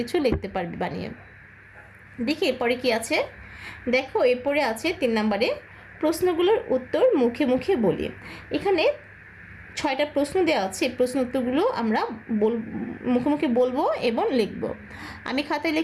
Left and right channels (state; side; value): identical; both; correlation 1.00